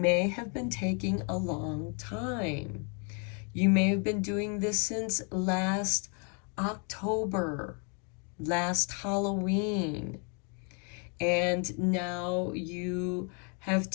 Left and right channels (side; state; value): right; quieter; 38.4 dB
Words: have been taking a long time. You may have been doing this since last October, last Halloween, and now you have